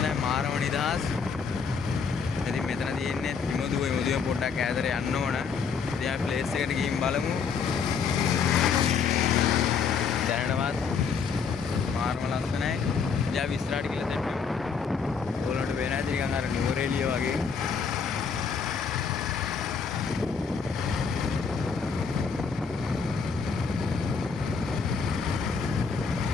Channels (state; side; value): quieter; right; 5.8 dB